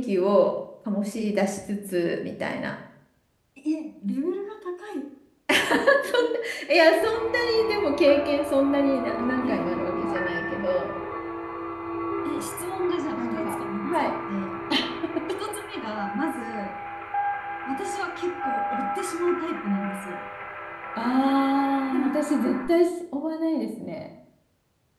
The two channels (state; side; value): identical; both; correlation 1.00